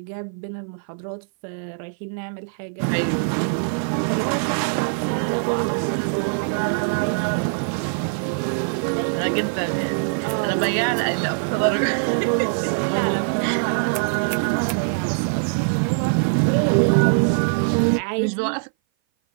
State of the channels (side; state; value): left; silent; 57 dB below the other